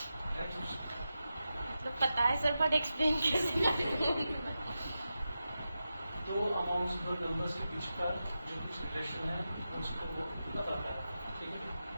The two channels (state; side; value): inverted; both; correlation -0.91